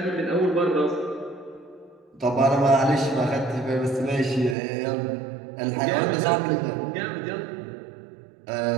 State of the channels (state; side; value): drops out; left; at 4.5 s